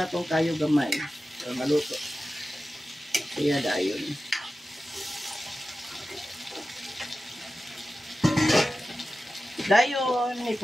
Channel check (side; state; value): both; normal; correlation 0.94